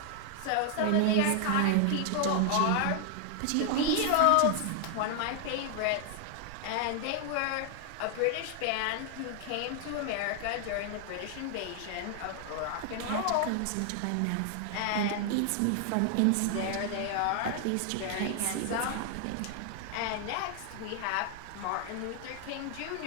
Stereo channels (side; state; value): both; different; correlation 0.00